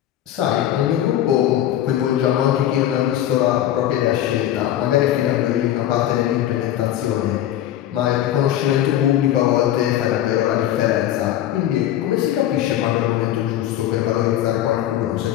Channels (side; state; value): right; quieter; 12.2 dB